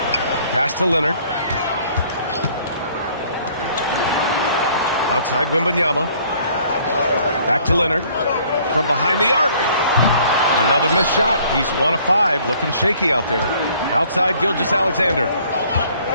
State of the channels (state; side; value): inverted; both; correlation -0.58